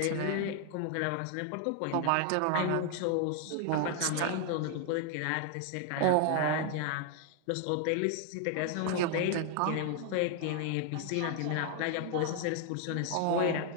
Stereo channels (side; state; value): both; different; correlation 0.00